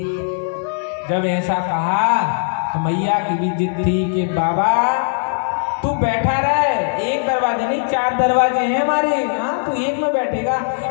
जब ऐसा कहा तो मैया की भी जिद थी कि बाबा तू बैठा रहे, एक दरवाजा नहीं 4 दरवाजे हैं हमारे, हाँ तू एक में बैठेगा।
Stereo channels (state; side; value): silent; right; 67 dB below the other